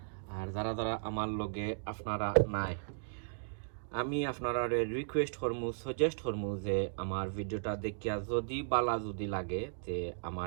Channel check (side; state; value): left; silent; digital silence